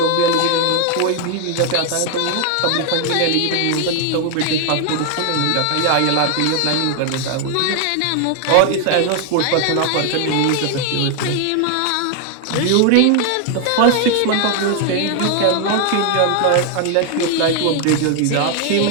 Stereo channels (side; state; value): both; different; correlation 0.01